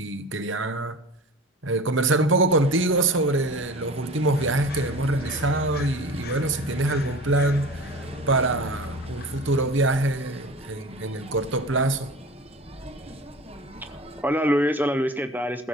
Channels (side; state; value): both; normal; correlation 0.37